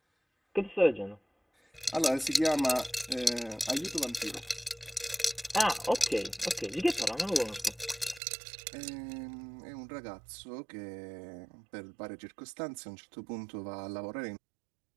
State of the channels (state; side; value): drops out; left; at 8.2 s